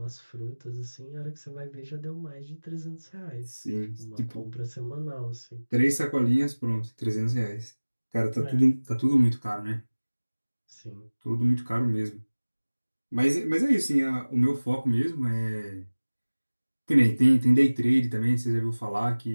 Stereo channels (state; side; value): inverted; both; correlation -1.00